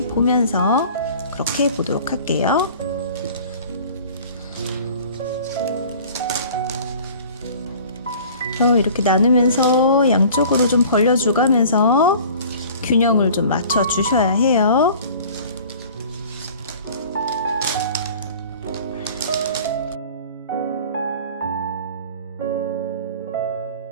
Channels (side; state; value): both; inverted; correlation -0.46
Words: 그렇게 해보도록 할게요. 이렇게 나누면서 양쪽으로 좀 벌려주가면서 균형을 좀 맞춰 주셔야 해요.